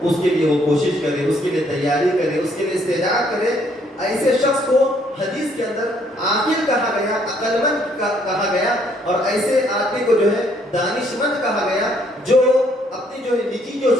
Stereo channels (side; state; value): both; normal; correlation 0.67